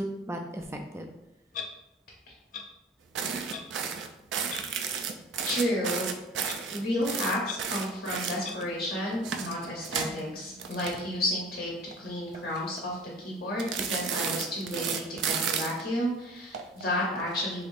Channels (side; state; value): both; normal; correlation 0.40